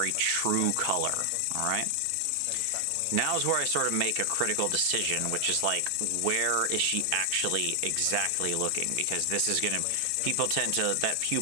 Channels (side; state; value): both; different; correlation 0.00